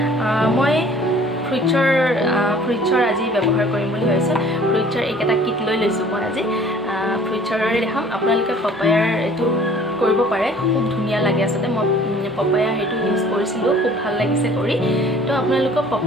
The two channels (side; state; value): both; normal; correlation 0.52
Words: মই ফ্ৰুইটছৰ আজি ব্যৱহাৰ কৰিম বুলি ভাবিছোঁ ফ্ৰুইটছৰ এইকেইটা কিট লৈ লৈছোঁ মই আজি ফ্ৰুইটছৰে দেখাম আপোনালোকে পপায়াৰ এইটো কৰিব পাৰে খুব ধুনীয়া লাগে আচলতে মই পপায়া সেইটো ইউজ কৰিছিলোঁ খুব ভাল লাগিছে কৰি তো আপোনালোকক